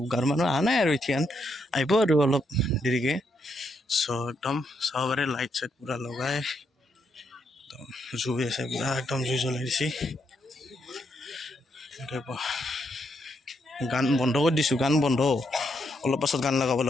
গাঁৱৰ মানুহ অহা নাই আৰু এতিয়া আহিব আৰু অলপ দেৰিকৈ চ' একদম চাব পাৰে লাইট চাইট পূৰা লগাই একদম জুই আছে পূৰা একদম জুই জ্বলাই দিছে গান বন্ধ কৰি দিছোঁ গান বন্ধ অলপ পাছত গান লগাব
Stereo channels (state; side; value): normal; both; correlation 0.78